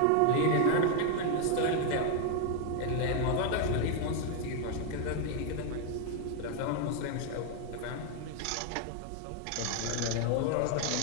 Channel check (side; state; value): both; different; correlation 0.01